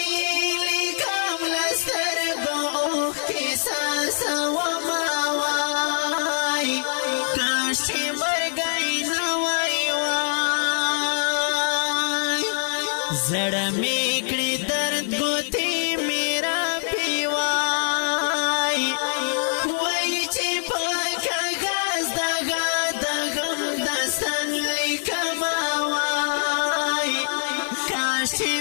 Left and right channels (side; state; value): right; silent; 63 dB below the other